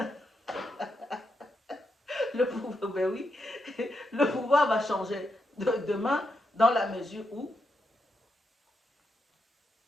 Le pouvoir, ben oui, le pouvoir va changer de main dans la mesure où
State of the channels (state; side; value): normal; both; correlation 0.83